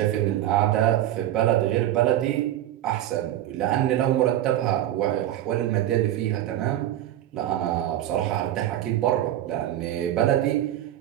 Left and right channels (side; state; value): left; quieter; 12.8 dB